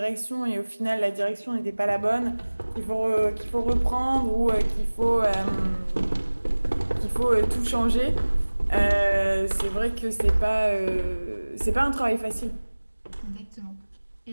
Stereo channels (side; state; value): both; inverted; correlation -1.00